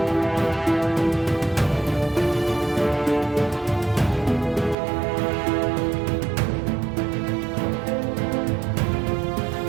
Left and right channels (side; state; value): left; drops out; at 4.8 s